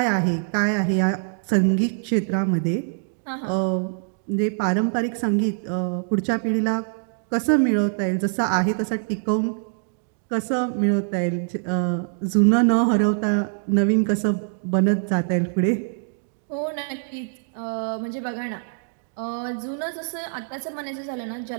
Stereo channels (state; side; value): silent; left; 63 dB below the other